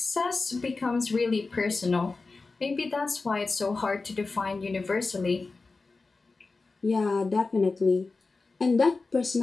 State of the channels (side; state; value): right; quieter; 3.9 dB